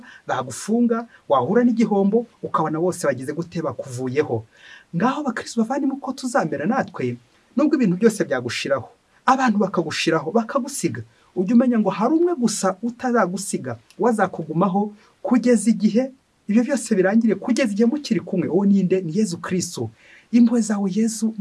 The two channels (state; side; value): identical; both; correlation 1.00